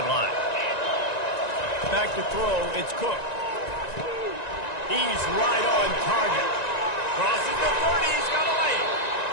Back to throw. It's Cook. He's right on target. Crosses the 30. He's got a lane.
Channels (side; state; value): right; late; 1.9 ms